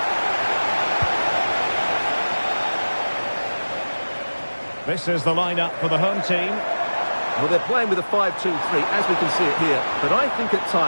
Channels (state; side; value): inverted; both; correlation -1.00